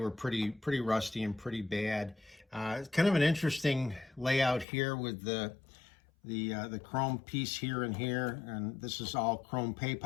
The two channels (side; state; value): right; drops out; at 4.7 s